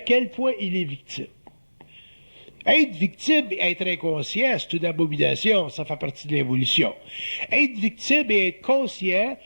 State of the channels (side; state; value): both; inverted; correlation -1.00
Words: point il est victime. Être victime et être inconscient, c'est une abomination, ça fait partie de l'évolution. Être victime et être conscient,